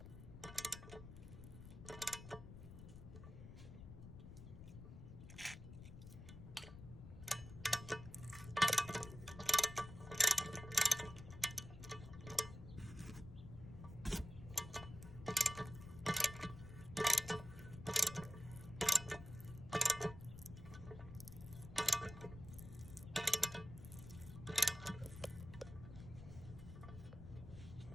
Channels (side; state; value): left; noise; rumble, 12 dB below the sound